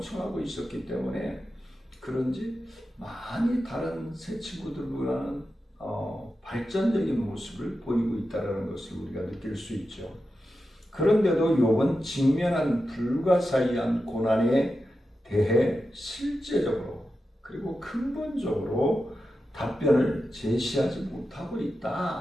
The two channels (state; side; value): normal; both; correlation 0.90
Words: 있었기 때문에 그런지 많이 다른 새 친구들보다는 발전적인 모습을 보이고 있다는 것을 우리가 느낄 수 있죠. 그런데도 욥은 직면한 불가사의한 고난에 대해 실제적으로 그리고 근본적으로 답변을 제시하지 못하고